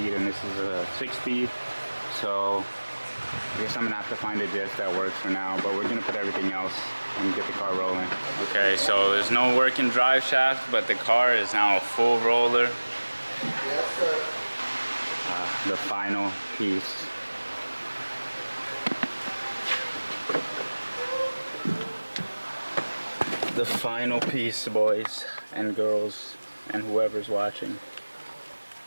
and this is a 6-speed. So I guess I'm gonna have to find a diff that works for now, but we're gonna put everything else and get the car rolling. Okay, so there's no working drive shaft, but the car is now a full roller. Yes, sir. The final piece. The final piece, boys and girls, and whoever's watching.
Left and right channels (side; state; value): both; inverted; correlation -1.00